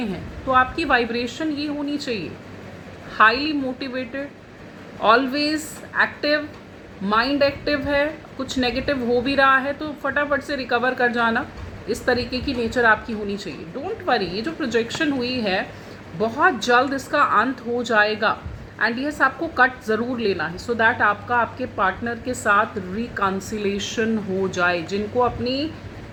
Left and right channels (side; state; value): both; identical; correlation 1.00